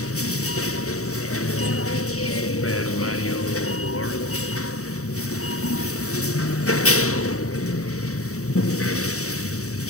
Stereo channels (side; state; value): right; late; 0.65 ms